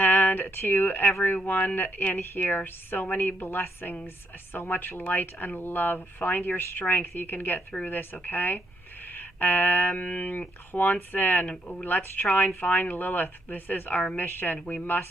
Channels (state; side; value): normal; both; correlation 0.75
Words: to everyone in here, so many blessings, so much light and love. Find your strength. You can get through this, okay? Juanson, let's try and find Lilith. This is our mission. We